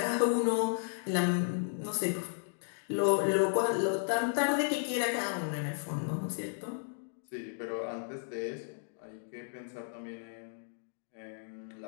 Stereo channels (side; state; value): right; silent; digital silence